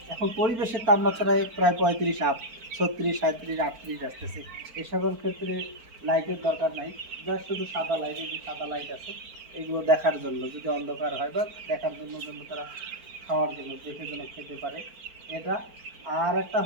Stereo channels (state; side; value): late; left; 4.4 ms